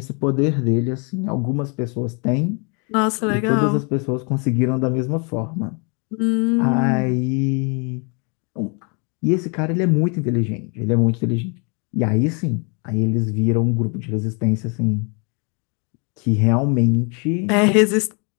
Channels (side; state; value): right; quieter; 35.3 dB